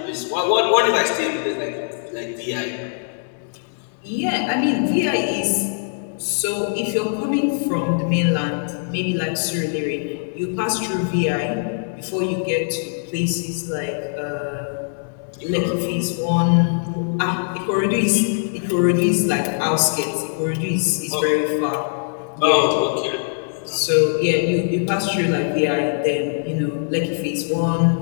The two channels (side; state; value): right; silent; digital silence